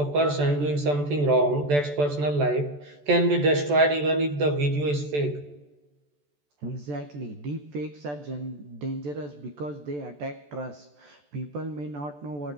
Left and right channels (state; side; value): late; left; 14 ms